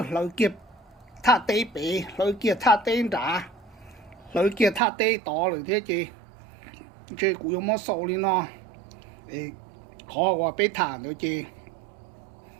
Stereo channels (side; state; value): left; drops out; at 4.8 s